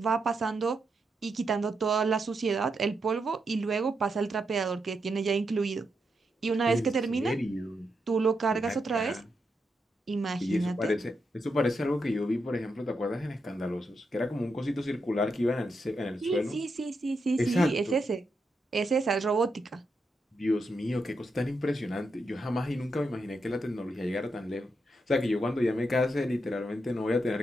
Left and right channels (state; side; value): normal; both; correlation 0.83